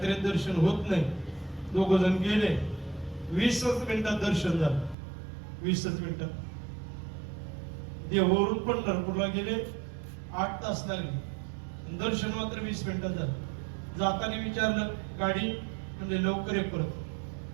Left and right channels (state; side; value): drops out; left; at 5.0 s